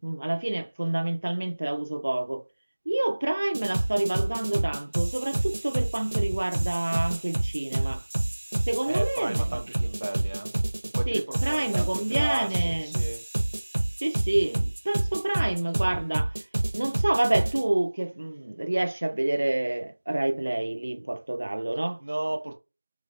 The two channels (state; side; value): inverted; both; correlation -1.00